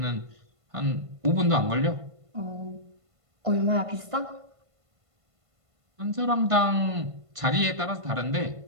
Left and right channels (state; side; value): late; left; 1.5 ms